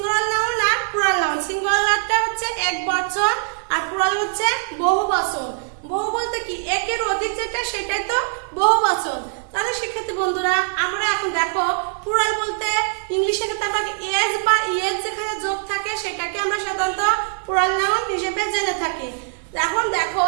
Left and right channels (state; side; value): silent; left; digital silence